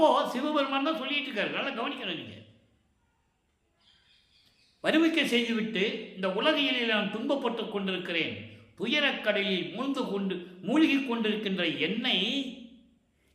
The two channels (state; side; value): identical; both; correlation 1.00